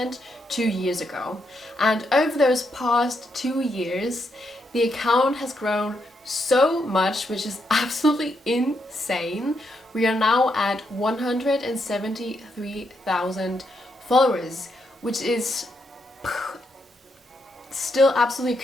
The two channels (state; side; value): normal; both; correlation 0.80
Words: 2 years ago. And over those past 2 years, the account has grown so much, which is absolutely insane. We are now at 173,000 followers, which is still absolutely